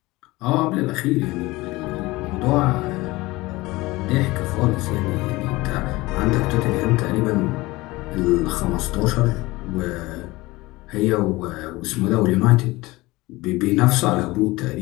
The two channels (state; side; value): quieter; right; 20.6 dB